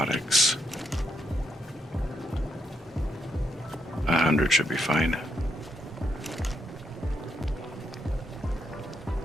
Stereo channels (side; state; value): both; normal; correlation 0.78